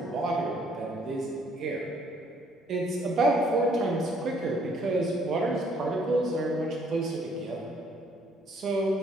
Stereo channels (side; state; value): both; normal; correlation 0.64